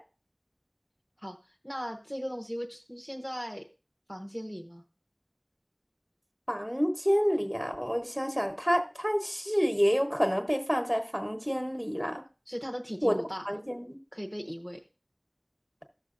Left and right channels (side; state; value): both; identical; correlation 1.00